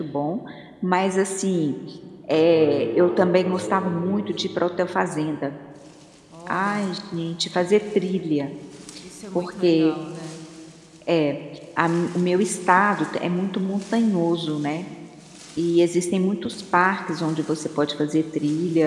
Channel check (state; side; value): identical; both; correlation 1.00